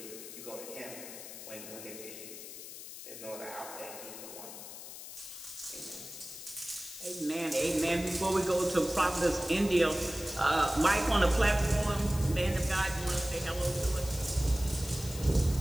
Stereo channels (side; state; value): left; noise; hiss, 12 dB below the sound